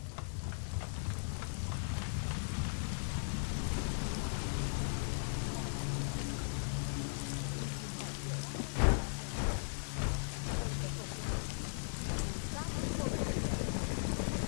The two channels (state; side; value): silent; right; 52 dB below the other